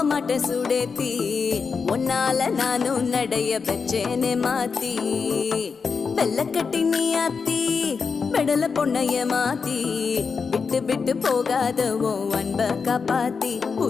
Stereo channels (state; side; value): quieter; right; 5.3 dB